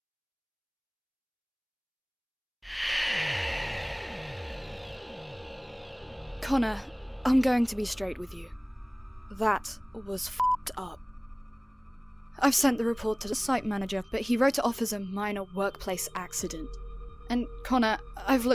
Connor, I'm going to be straight with you. That was f***ed up. I've sent the report to the site manager, but he wrote it off as a minor workplace accident. And Connor, I've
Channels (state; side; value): identical; both; correlation 1.00